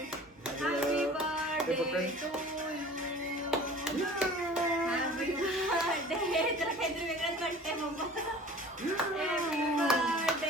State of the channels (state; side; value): normal; both; correlation 0.43